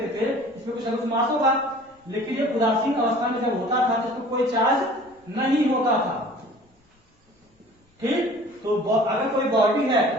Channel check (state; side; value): normal; both; correlation 0.47